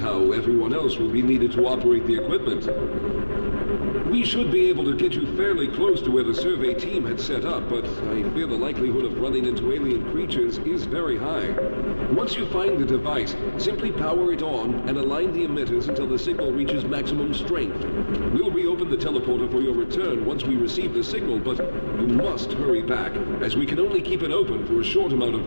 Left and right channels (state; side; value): inverted; both; correlation -1.00